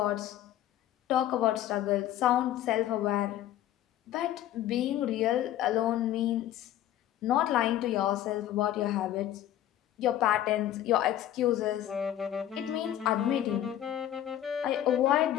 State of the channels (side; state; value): right; quieter; 12.2 dB